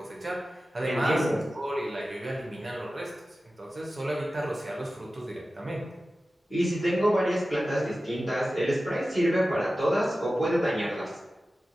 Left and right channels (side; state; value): both; normal; correlation 0.95